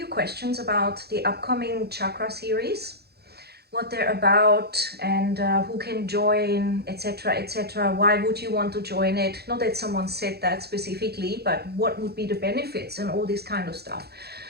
questions about the upcoming chakra series, what they're about and who can join, etc, etc. Why would you want to join it? Not that someone said that specifically, but what would be the benefits and all this kind of stuff.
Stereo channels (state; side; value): late; left; 0.47 ms